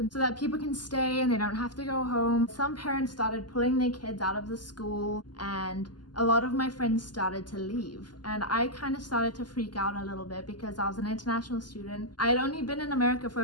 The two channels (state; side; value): late; right; 0.70 ms